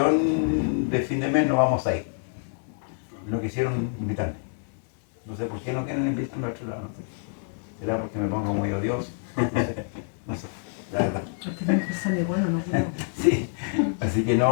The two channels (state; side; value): silent; right; digital silence